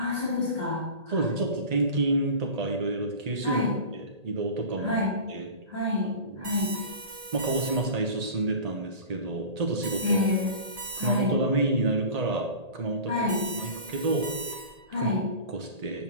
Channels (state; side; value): late; left; 1.8 ms